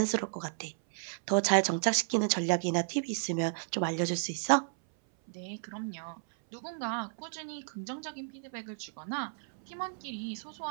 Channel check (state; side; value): silent; left; 56 dB below the other